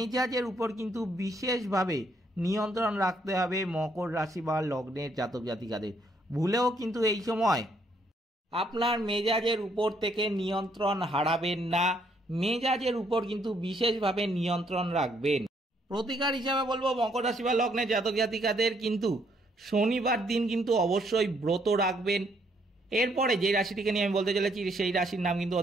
উপর কিন্তু বিশেষভাবে নিয়ন্ত্রণ রাখতে হবে মকর রাশি বা লগ্নের জাতক জাতিকাদের। ভুলেও কিন্তু এই সময় আপনার মেজাজের উপর থেকে নিয়ন্ত্রণ হারাবেন না, মেজাজের উপর কিন্তু বিশেষভাবে নিয়ন্ত্রণ রাখবেন। প্রতিকার হিসাবে বলবো মকর রাশি বা লগ্নের জাতক জাতিকাদের কিন্তু শনিবার দিন কিন্তু অবশ্যই ব্রত রাখবেন। এরপরে যে রাশিটিকে নিয়ে আমি বলতে চলেছি সেই রাশির নাম কিন্তু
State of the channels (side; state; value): both; normal; correlation 0.70